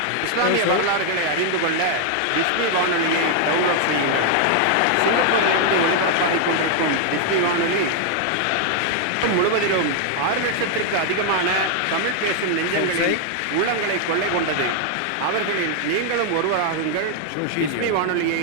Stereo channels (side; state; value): both; different; correlation 0.00